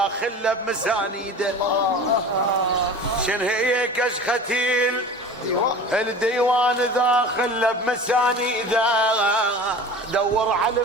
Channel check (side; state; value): both; normal; correlation 0.37